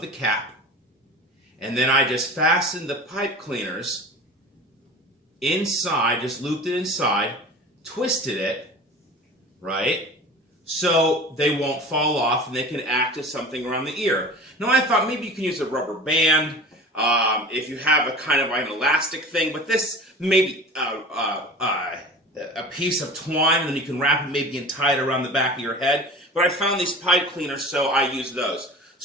cap, and then I just fastened the pipe cleaners inside, just looped it inside, twisted it, right? So they won't fall off and they can act as something around the ear. Now I thought maybe you can use a rubber band if you have a kind of an elastic thing, but this maybe a piece of twine, and then you can wrap it maybe and tie it around the back of your head. But I found these pipe cleaners, so I used those.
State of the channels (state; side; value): normal; both; correlation 0.38